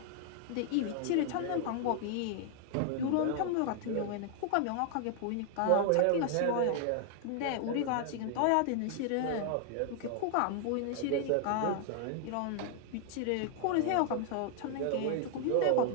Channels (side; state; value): both; different; correlation 0.00